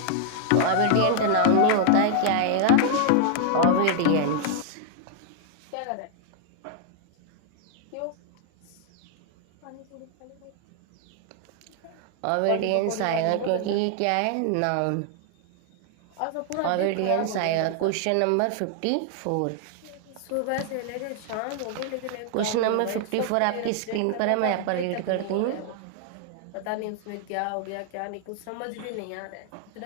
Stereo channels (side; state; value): both; different; correlation 0.00